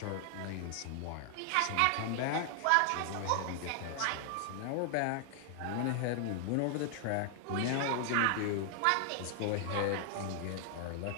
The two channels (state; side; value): different; both; correlation 0.00